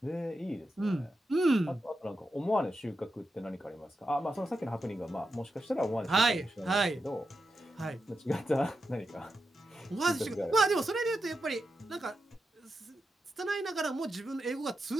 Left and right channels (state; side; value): normal; both; correlation 0.88